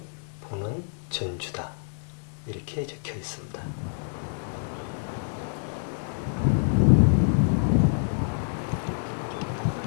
보는 전주다 이렇게 적혀 있습니다.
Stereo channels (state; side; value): silent; right; 60 dB below the other